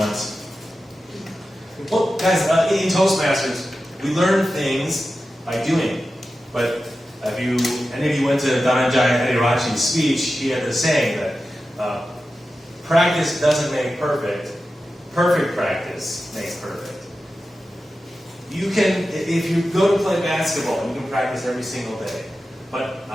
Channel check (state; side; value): normal; both; correlation 0.93